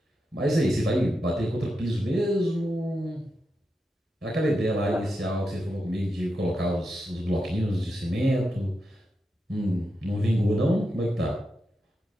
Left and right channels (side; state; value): both; normal; correlation 0.87